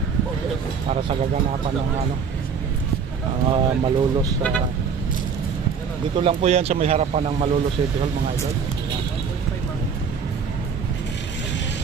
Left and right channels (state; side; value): quieter; left; 6.3 dB